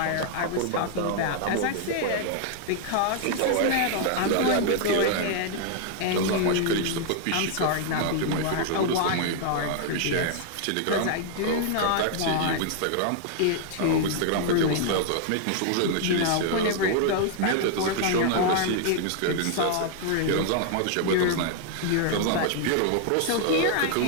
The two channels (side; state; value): both; different; correlation 0.00